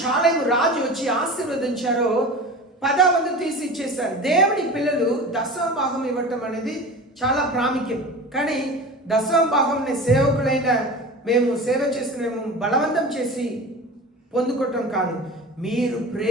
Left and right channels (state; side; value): normal; both; correlation 0.33